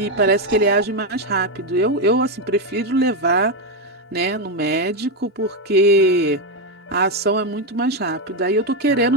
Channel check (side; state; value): both; normal; correlation 0.06